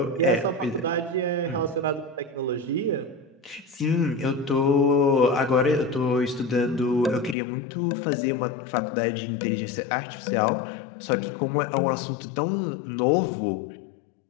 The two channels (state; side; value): drops out; right; at 7.4 s